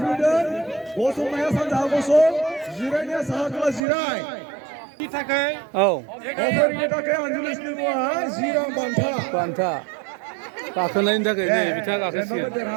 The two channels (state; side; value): drops out; left; at 3.8 s